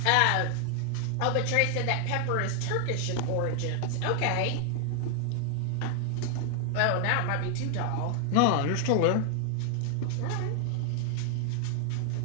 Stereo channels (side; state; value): both; different; correlation 0.00